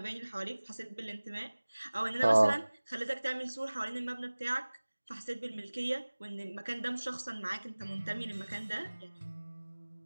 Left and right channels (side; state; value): both; inverted; correlation -1.00